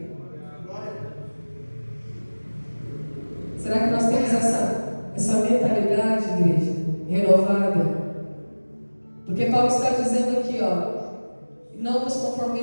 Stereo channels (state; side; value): inverted; both; correlation -1.00